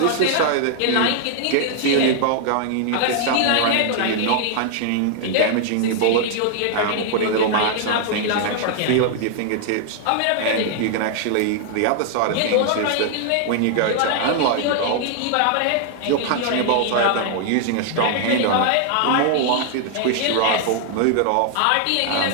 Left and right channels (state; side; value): different; both; correlation 0.00